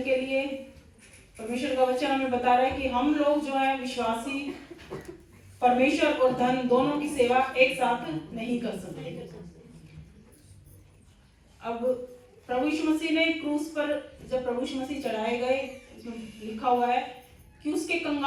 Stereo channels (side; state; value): both; identical; correlation 1.00